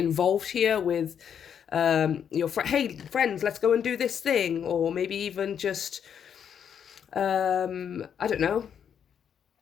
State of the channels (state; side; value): quieter; right; 8.2 dB